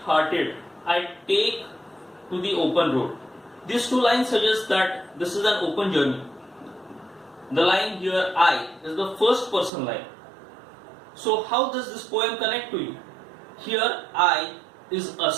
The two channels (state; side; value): drops out; left; at 9.7 s